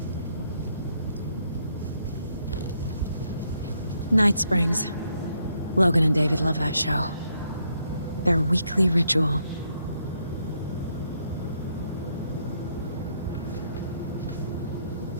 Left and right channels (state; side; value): inverted; both; correlation -0.74